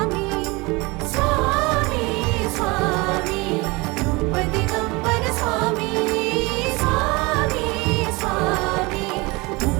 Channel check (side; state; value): left; quieter; 24.9 dB